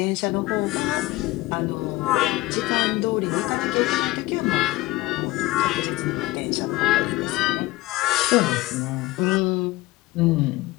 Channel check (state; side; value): quieter; right; 18.9 dB